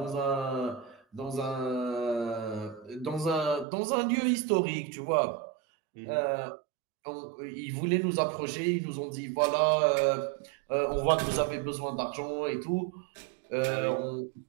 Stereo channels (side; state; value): left; drops out; at 3.7 s